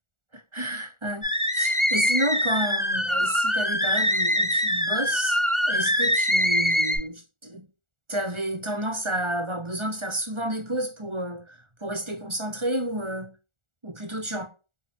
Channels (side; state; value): left; late; 1.4 ms